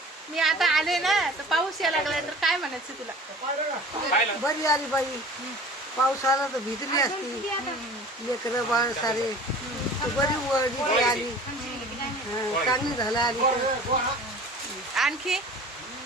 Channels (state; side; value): normal; both; correlation 0.43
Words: मी आता आले ना तर पाऊस यायला लागलाय, तर काय म्हणायचं तुला? बरी आली बाई. पाऊस आला तर भिजली असती. लेकरं बाळ सारे बरी वळली आली. चांगली झालं आली. आणखी